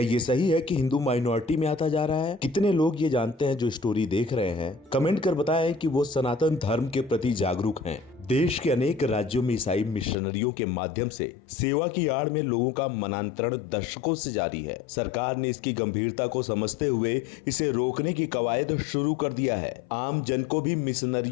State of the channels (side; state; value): right; drops out; at 10.2 s